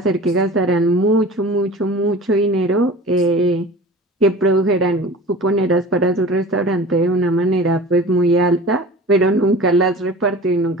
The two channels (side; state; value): both; normal; correlation 0.39